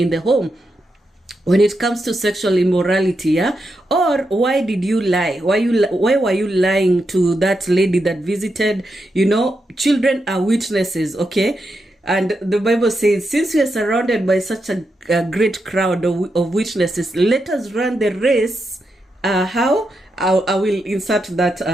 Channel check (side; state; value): both; normal; correlation 0.85